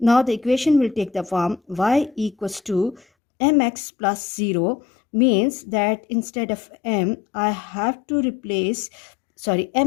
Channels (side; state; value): right; drops out; at 3.1 s